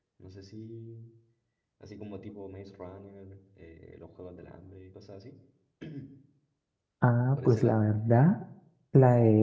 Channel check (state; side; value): identical; both; correlation 1.00